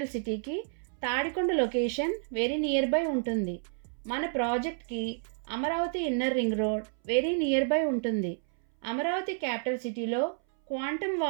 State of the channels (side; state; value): left; silent; 58 dB below the other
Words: సిటీకి Tadikonda location very near by ఉంటుంది. మన ప్రాజెక్ట్కి Amaravati inner ring road very near by ఉంటుంది. అమరావతి క్యాపిటల్ సిటీలో క్వాంటమ్